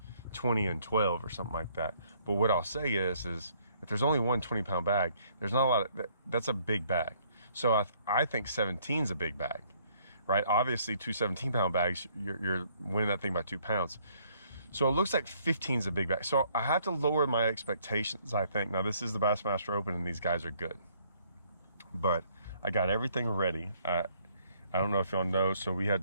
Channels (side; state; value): both; inverted; correlation -0.65